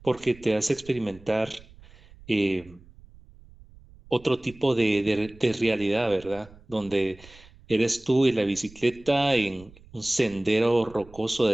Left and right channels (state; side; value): noise; right; rumble, 23 dB below the sound